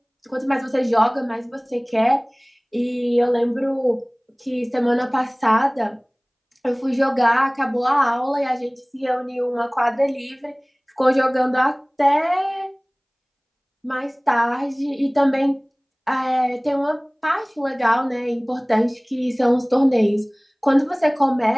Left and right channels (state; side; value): identical; both; correlation 1.00